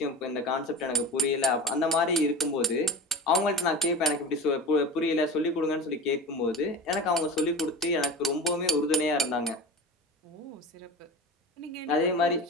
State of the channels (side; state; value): both; normal; correlation 0.33